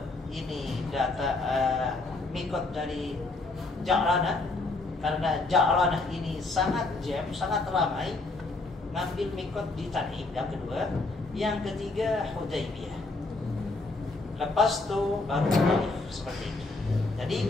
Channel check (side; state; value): right; quieter; 3.3 dB